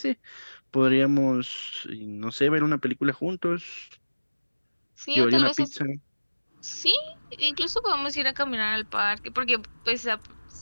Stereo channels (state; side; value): inverted; both; correlation -1.00